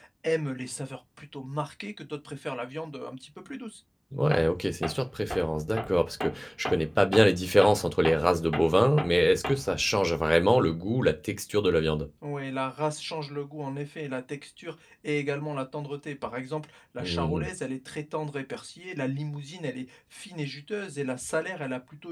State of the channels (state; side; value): identical; both; correlation 1.00